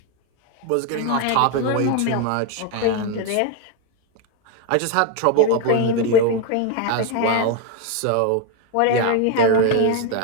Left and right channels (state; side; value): different; both; correlation 0.01